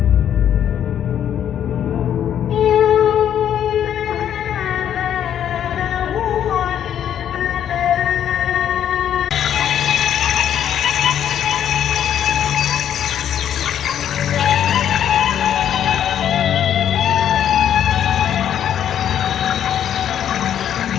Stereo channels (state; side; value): quieter; right; 9.8 dB